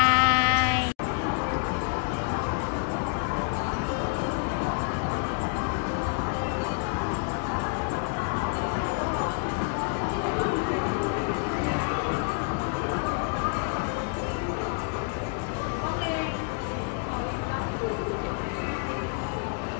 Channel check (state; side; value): quieter; right; 38.7 dB